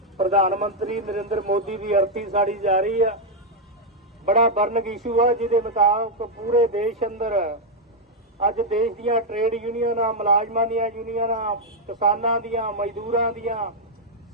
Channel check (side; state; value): both; normal; correlation -0.02